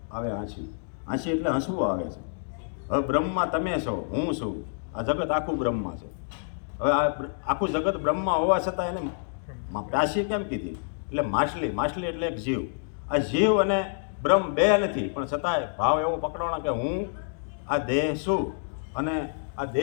આવે આંસી. આંસી એટલે હસવું આવે છે. હવે બ્રહ્મમાં તમે છો, હું છું, આ જગત આખું બ્રહ્મમાં છે. હવે આ આખું જગત બ્રહ્મમાં હોવા છતાં એને પ્યાસી કેમ કીધી? એટલે માછલી. માછલી એટલે એક જીવ. આ જીવ અને બ્રહ્મ 2 નથી, પણ છતાંય ભાવ એવો પકડવાનો કે હું આ દેહ છું અને આ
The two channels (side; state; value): right; silent; digital silence